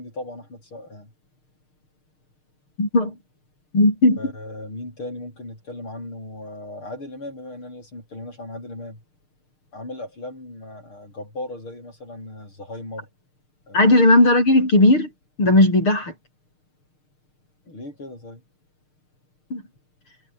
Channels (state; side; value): late; right; 6.6 ms